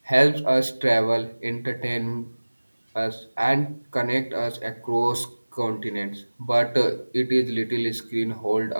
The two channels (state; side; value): inverted; both; correlation -1.00